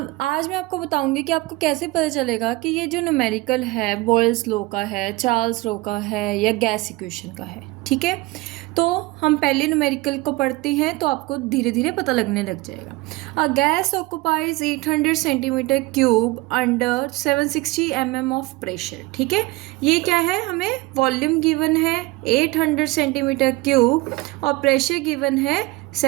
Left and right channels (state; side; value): quieter; left; 21.0 dB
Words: आज मैं आपको बताऊंगी कि आपको कैसे पता चलेगा कि ये जो न्यूमेरिकल है बॉयल्स लॉ का है, चार्ल्स लॉ का है या गैस इक्वेशन का है। ठीक है, तो हम पहले न्यूमेरिकल को पढ़ते हैं तो आपको धीरे धीरे पता लगने लग जाएगा। A gas occupies 800 centimetre cube under 760 mm of pressure. ठीक है, ये क्या है, हमें वॉल्यूम गिवन है 800 सेंटीमीटर क्यूब और प्रेशर गिवन है